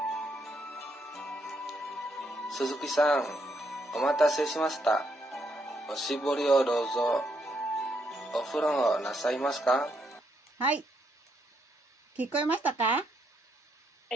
鈴木さん、お待たせしました。おしぼりをどうぞ。お風呂なさいますか？はい。聞こえましたか？は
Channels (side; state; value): both; normal; correlation 0.76